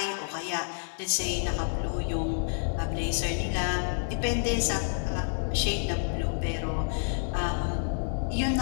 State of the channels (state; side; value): silent; right; digital silence